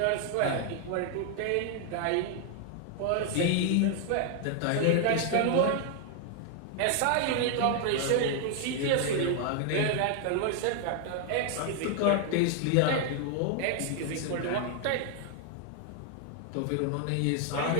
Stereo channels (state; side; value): different; both; correlation 0.00